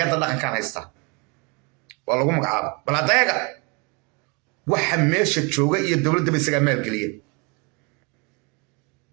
dhaqankan haysta waa lagu magacaaba bal adayaga waxa meesha jooga iyo dowladda isaga maalgeliya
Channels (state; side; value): quieter; left; 31.1 dB